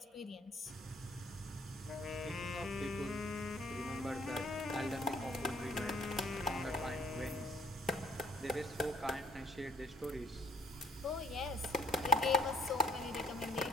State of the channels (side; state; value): both; normal; correlation 0.62